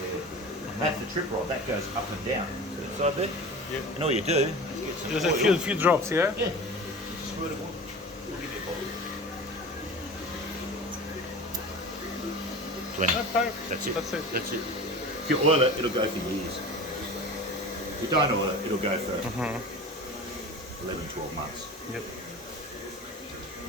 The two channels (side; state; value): both; normal; correlation 0.35